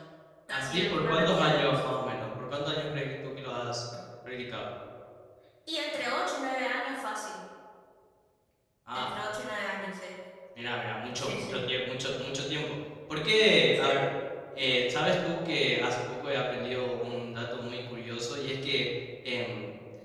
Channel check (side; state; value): both; identical; correlation 1.00